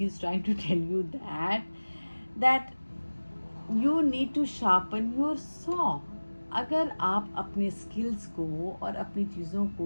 you that you need to sharpen your saw. अगर आप अपने skills को और अपनी चीज़ों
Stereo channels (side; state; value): both; inverted; correlation -1.00